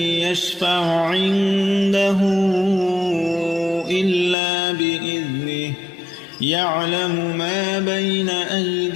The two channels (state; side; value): drops out; right; at 4.4 s